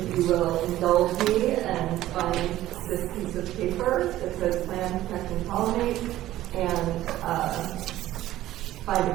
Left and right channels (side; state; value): left; quieter; 14.6 dB